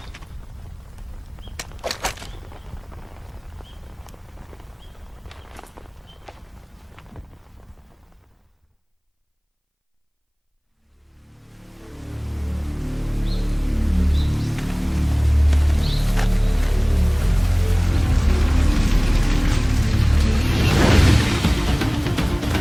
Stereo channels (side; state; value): both; identical; correlation 1.00